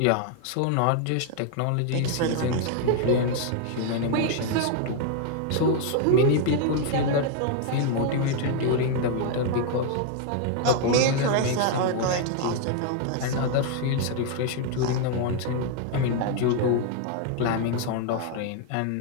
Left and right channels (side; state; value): both; different; correlation 0.00